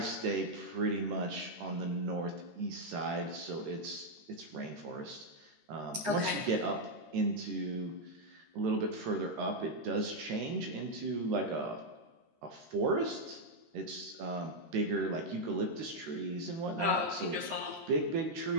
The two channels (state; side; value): late; left; 13 ms